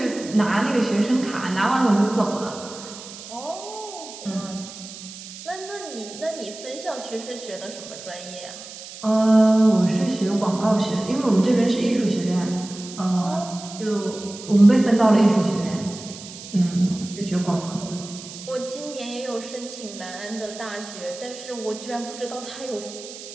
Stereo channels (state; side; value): noise; right; hiss, 14 dB below the sound